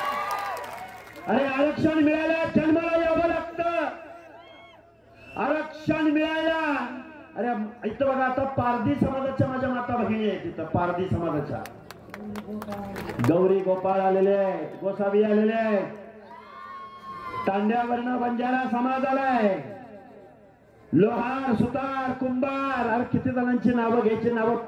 अरे आरक्षण मिळायला जन्माला यावं लागतं. आरक्षण मिळायला, अरे इथं बघा, आता पारधी समाजाच्या माझ्या माता भगिनी आहेत. तिथं पारधी समाजाच्या गौरी गोपाळ आलेले आहेत, गोसावी आलेले आहेत, तांड्यावरनं बंजारा समाज आलाय, लोहार, सुतार, कुंभार. अरे किती जणांची नावं घ्यायची, नावं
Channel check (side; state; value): both; identical; correlation 1.00